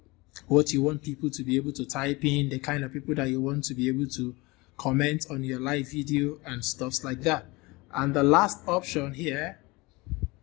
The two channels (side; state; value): right; quieter; 23.8 dB